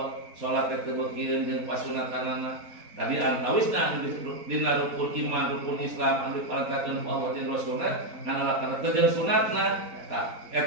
salat teh teu bagieun jeung pasunatanana tadi antawisna dina rukun iman rukun Islam anu diparantakeun ku Allah jeung Rasulna ngan alakan teh jeung sunatna tah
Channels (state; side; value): late; left; 4.2 ms